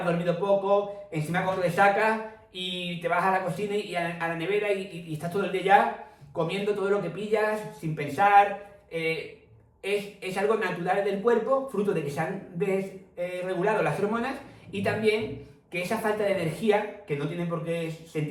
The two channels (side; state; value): both; identical; correlation 1.00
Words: dormido poco, encima con resaca, y te vas a la cocina y a la nevera y estás todo el día ya comiendo todo lo que pillas, sin pensar. Es algo natural del cuerpo, fruto de que se han desregulado las hormonas, y también que esa falta de energía, que no tiene por qué